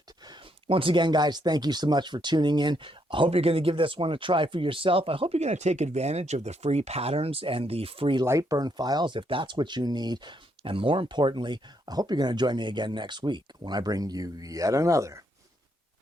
Once again, guys, thank you so much for tuning in. I hope you're going to give this one a try for yourself. I hope you're going to take advantage of the free patterns and the free Lightburn files if that's what you need. And more importantly, I hope you're going to join me again next week when I bring you yet another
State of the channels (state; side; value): normal; both; correlation 0.75